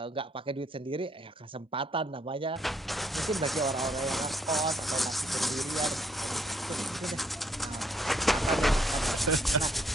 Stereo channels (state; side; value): normal; both; correlation 0.70